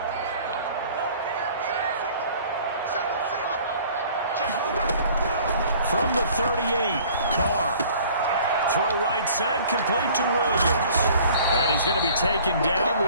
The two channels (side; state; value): both; inverted; correlation -0.51